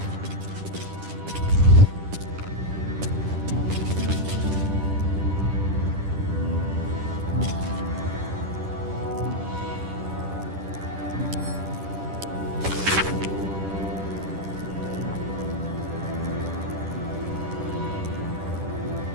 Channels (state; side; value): late; left; 10 ms